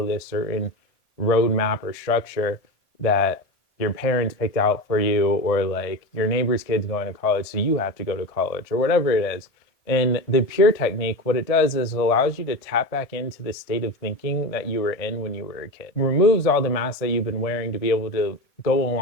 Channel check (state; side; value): late; right; 1.6 ms